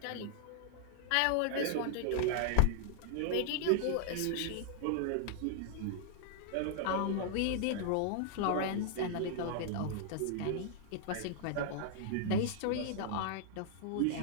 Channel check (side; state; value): both; different; correlation -0.01